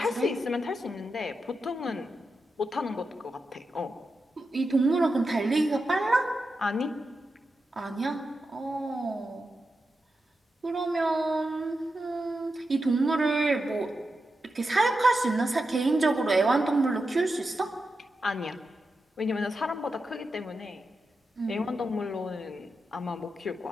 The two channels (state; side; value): normal; both; correlation 0.89